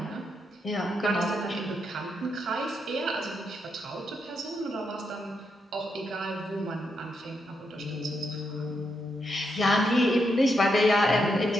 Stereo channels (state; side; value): normal; both; correlation 0.81